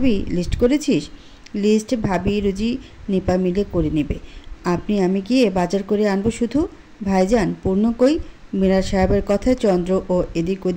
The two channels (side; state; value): both; identical; correlation 1.00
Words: লিস্ট করেছিস? লিস্ট ভাবি রুজি নিপা মিলে করে নেবে। আমি গিয়ে বাজার করে আনবো শুধু। ভাইজান পূর্ণ কই? মিরাজ সাহেবের কথায় চন্দ্র ও এদিক